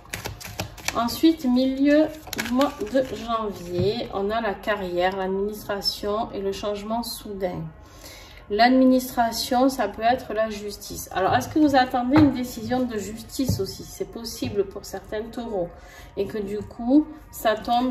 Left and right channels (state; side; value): identical; both; correlation 1.00